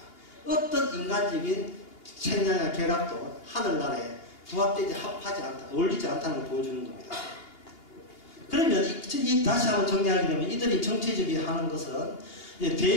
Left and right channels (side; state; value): right; late; 2.8 ms